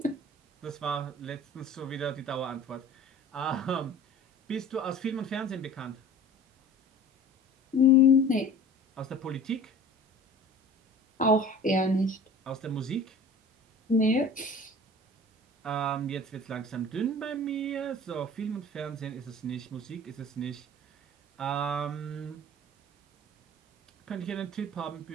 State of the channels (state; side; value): normal; both; correlation 0.43